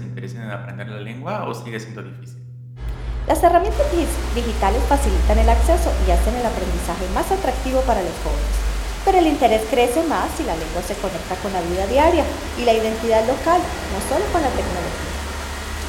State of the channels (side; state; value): both; identical; correlation 1.00